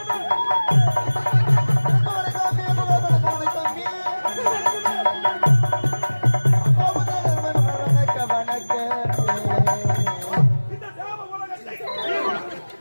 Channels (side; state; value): both; inverted; correlation -1.00